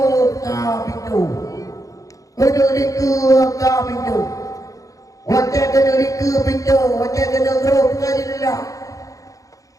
pintu kena liku pintu wajah kena liku pintu wajah kena grup jendela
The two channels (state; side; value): late; right; 0.16 ms